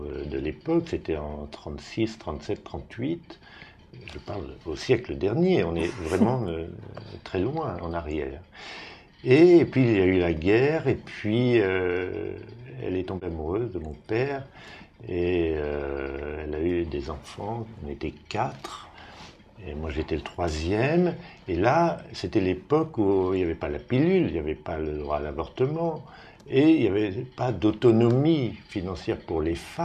de l'époque. C'était en 36, 37, 38. Je parle au siècle dernier, on est vraiment très loin en arrière. Et puis il y a eu la guerre, et puis elle est tombée amoureuse de mon père, et elle a eu des enfants, on était 4, et moi j'étais le troisième, et là c'était l'époque où il n'y avait pas la pilule, il n'y avait pas le droit à l'avortement, et il n'y avait pas d'autonomie financière pour les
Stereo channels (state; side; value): identical; both; correlation 1.00